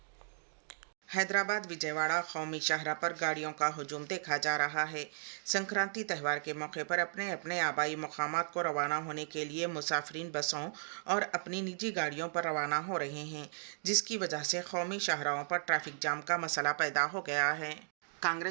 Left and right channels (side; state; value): left; silent; digital silence